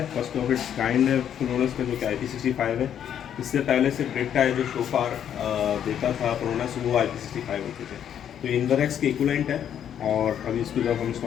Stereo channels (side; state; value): right; quieter; 9.4 dB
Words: फर्स्ट ऑफ इट्स काइंड है फ्रोनस का, जो कि IP65 है। इससे पहले से ब्रिक टाई जो शोफार देता था फ्रोनस, वो IP65 होते थे। तो ये इन्वरेक्स के इक्वलेंट है, और अभी इसको जब हम